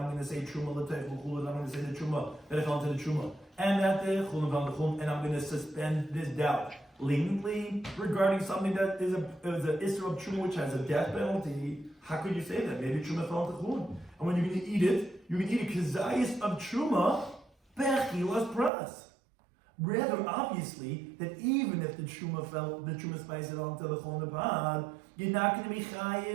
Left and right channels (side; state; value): left; drops out; at 18.7 s